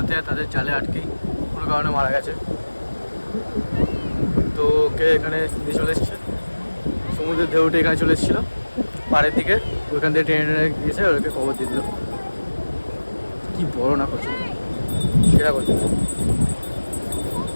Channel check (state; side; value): inverted; both; correlation -1.00